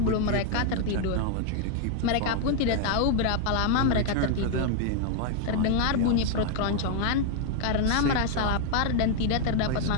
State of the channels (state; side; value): different; both; correlation 0.01